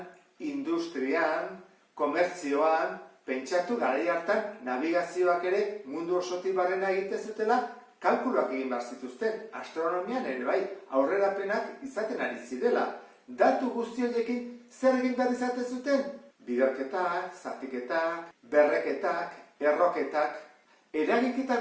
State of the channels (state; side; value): identical; both; correlation 1.00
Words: industrian, komertzioan, pentsatu garai hartan navigazioak ere mundu osotik barrena egiten zutela, kalkuluak egin behar zituzten. Astronomian ere bai, aurrerapenak izaten ari zirela. Datu guzti horiekin zer egin behar izaten zuten? Biderketak, zatiketak, berreketak, erroketak, eragiketa